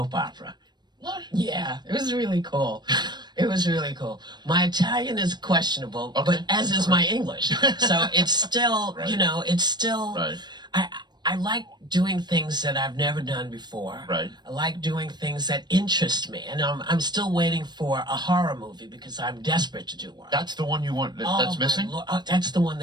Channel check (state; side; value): late; left; 0.21 ms